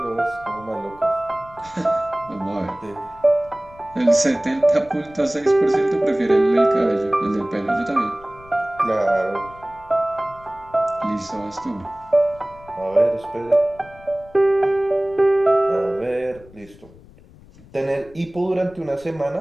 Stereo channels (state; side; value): noise; left; rumble, 23 dB below the sound